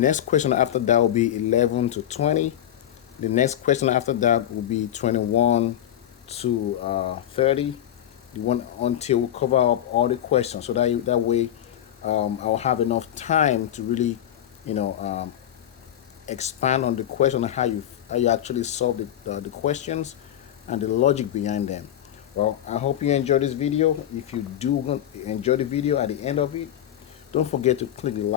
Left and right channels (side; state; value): right; quieter; 11.2 dB